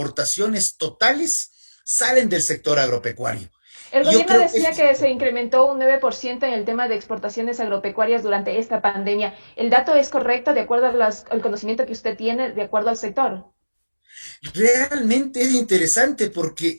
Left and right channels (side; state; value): both; inverted; correlation -1.00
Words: totales salen del sector agropecuario. El Y yo gobierno creo que decía esto es que se importante. incrementó un 9% en el tema de exportaciones agropecuarias durante esta pandemia. ¿El dato es correcto de acuerdo al conocimiento que usted tiene, de acuerdo al sector? Realmente es interesante